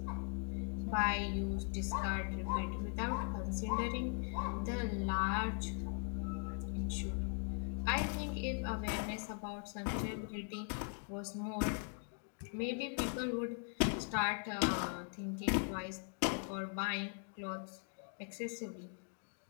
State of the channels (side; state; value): right; silent; 51 dB below the other